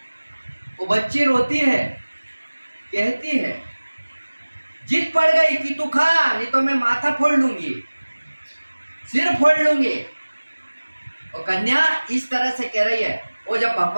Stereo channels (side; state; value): both; inverted; correlation -1.00